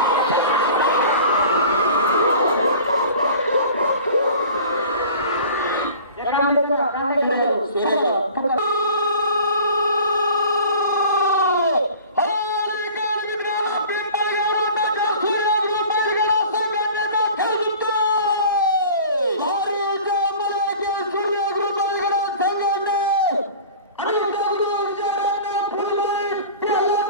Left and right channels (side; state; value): both; inverted; correlation -0.43